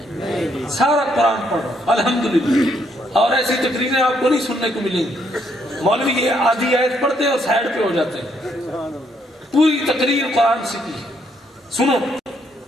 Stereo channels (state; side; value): normal; both; correlation 0.72